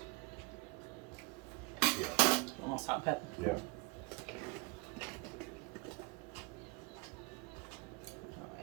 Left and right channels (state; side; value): quieter; left; 26.4 dB